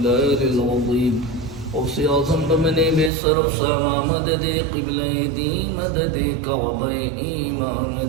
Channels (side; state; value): left; drops out; at 3.1 s